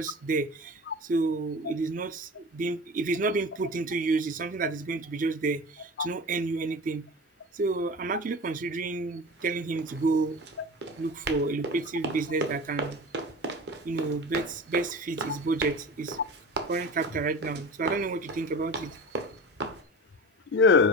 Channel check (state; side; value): normal; both; correlation 0.32